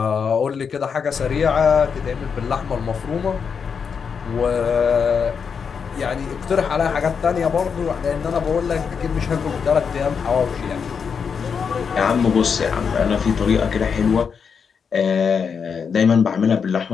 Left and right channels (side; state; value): right; quieter; 6.3 dB